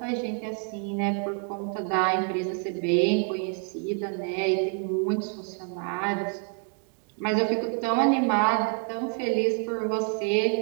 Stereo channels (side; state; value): left; quieter; 36.1 dB